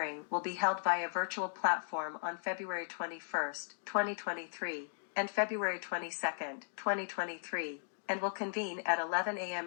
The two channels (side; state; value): right; silent; digital silence